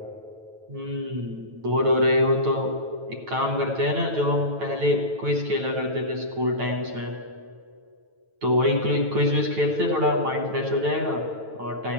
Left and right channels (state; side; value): late; left; 9.1 ms